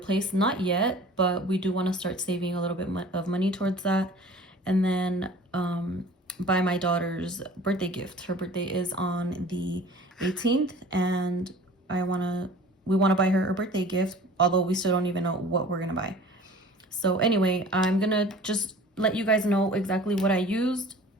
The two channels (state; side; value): normal; both; correlation 0.45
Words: Not yet, but we do want to start saving a little bit of money towards that. And then buy my daughter's birthday gift. Her birthday is on the 18th, and we want to buy her a birthday gift, although we still don't even know what we're gonna buy. So anyway, I'm gonna just let you guys know exactly what I used